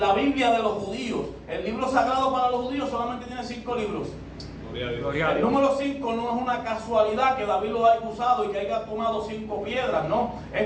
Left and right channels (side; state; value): both; identical; correlation 1.00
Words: Biblia de los judíos. El libro sagrado para los judíos solamente tiene 5 libros. El número 5 no es una casualidad que David lo haya usado y que haya tomado 5 piedras, no.